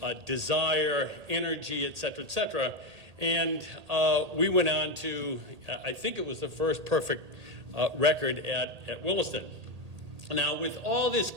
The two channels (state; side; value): late; left; 1.8 ms